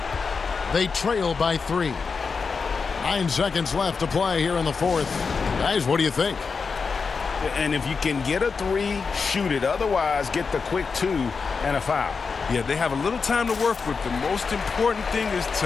They trail by 3. 9 seconds left to play here in the fourth. Guys, what do you think? And if you can get a 3, shoot it. Otherwise, get the quick 2 and a foul. Yeah, they have a little time to work with. The most important thing is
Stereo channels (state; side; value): quieter; right; 5.1 dB